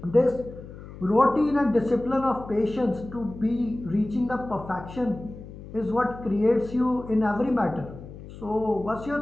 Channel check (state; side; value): noise; left; hum, 15 dB below the sound